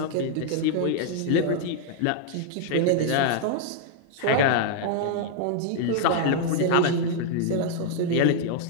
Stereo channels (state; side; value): different; both; correlation -0.01